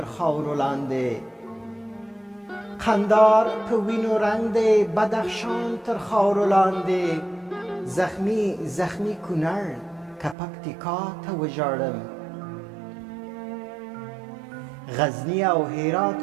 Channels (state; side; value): drops out; left; at 10.4 s